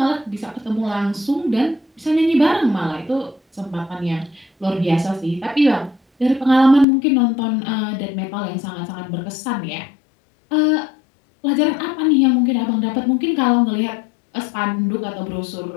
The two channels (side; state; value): right; drops out; at 6.9 s